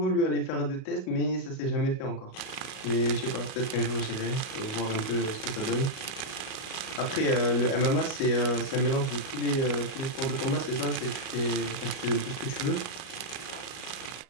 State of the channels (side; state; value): right; late; 37 ms